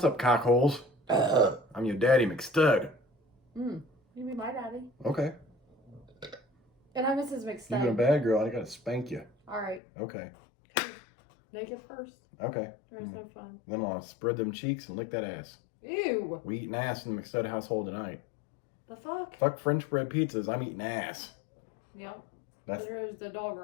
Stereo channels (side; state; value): right; drops out; at 9.8 s